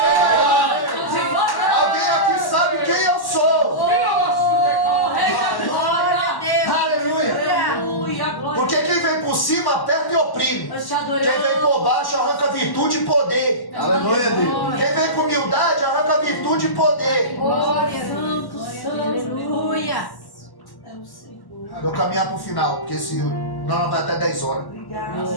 Alguém aqui sabe quem eu sou. Rei da Glória. Aleluia. Porque quem vem por cima aperta e oprime. Nós te adoramos. Quem vem por baixo arranca virtude e poder. Aleluia, Deus. Quem vem com humildade arranca virtude e poder. Glória, santo, santo. Aleluia. É o Senhor. Vou caminhar para o final, porque senão vai até 10 horas.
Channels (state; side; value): late; right; 1.1 ms